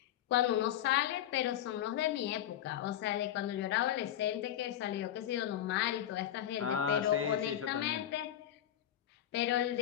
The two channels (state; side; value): quieter; right; 11.3 dB